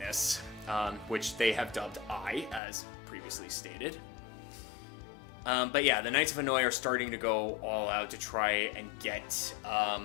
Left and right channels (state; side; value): drops out; right; at 2.6 s